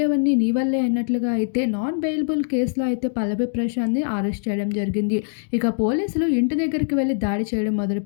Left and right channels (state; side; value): silent; right; digital silence